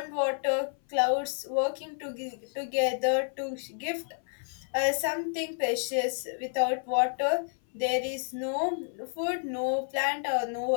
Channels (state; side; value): silent; right; 58 dB below the other